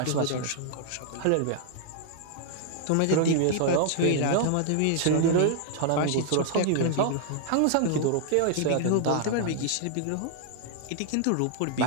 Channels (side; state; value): both; different; correlation 0.00